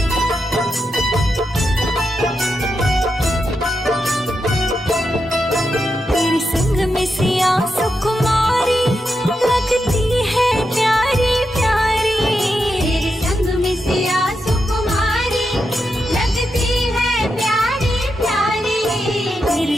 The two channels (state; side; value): normal; both; correlation 0.86